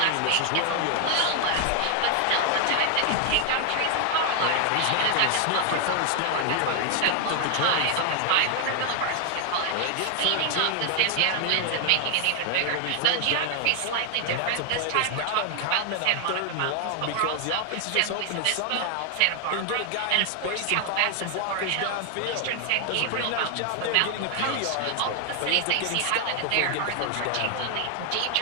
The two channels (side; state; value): both; different; correlation 0.00